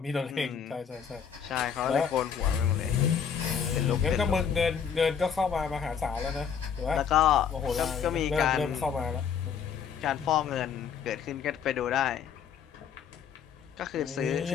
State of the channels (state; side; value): quieter; right; 7.4 dB